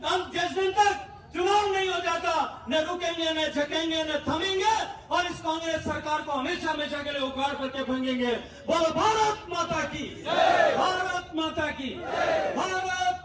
हम जिस दिन तक चुनाव नहीं हो जाता, न रुकेंगे, न झकेंगे, न थमेंगे, और इस कांग्रेस सरकार को हमेशा हमेशा के लिए उखाड़ करके फेंकेंगे। बोलो भारत माता की, भारत माता की, भारत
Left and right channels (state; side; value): identical; both; correlation 1.00